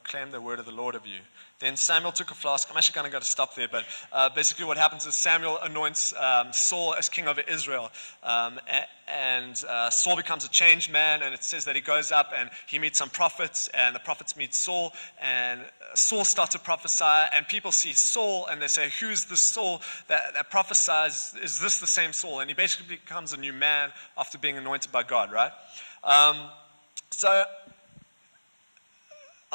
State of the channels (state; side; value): inverted; both; correlation -1.00